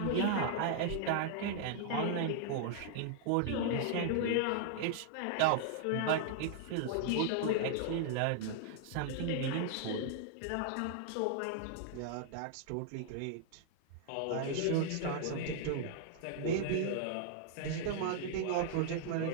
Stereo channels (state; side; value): different; both; correlation -0.01